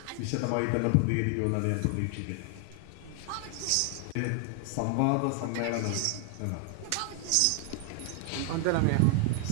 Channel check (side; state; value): both; different; correlation 0.00